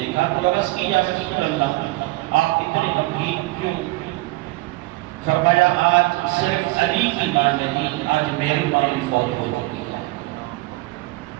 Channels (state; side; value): quieter; left; 21.3 dB